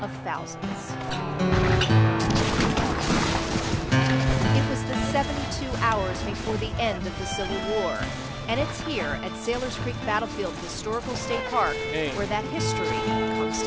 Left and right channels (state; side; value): identical; both; correlation 1.00